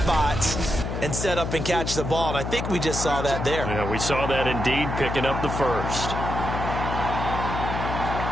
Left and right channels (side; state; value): left; noise; hum, 4 dB below the sound